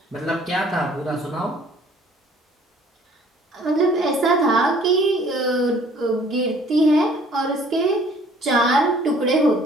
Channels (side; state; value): both; normal; correlation 0.56